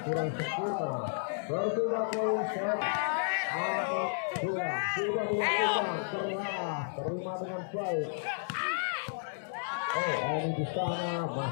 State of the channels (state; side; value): silent; right; digital silence